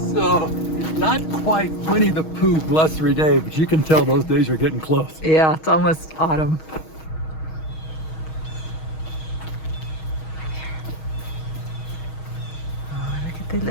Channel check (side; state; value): right; late; 6.3 ms